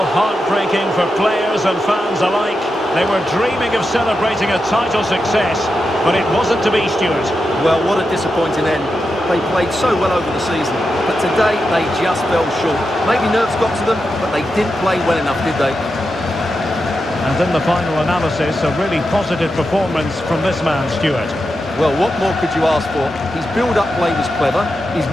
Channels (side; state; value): both; normal; correlation 0.88